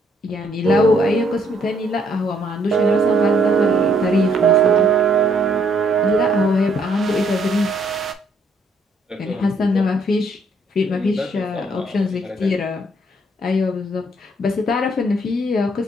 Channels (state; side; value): normal; both; correlation 0.68